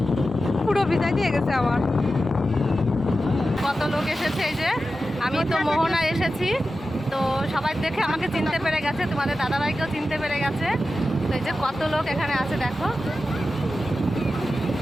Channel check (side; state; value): both; normal; correlation 0.92